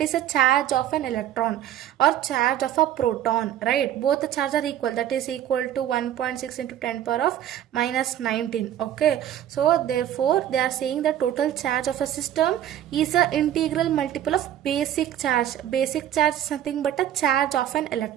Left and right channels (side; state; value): left; quieter; 11.2 dB